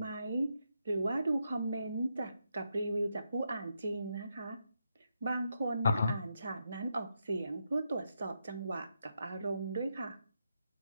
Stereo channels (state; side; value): inverted; both; correlation -0.82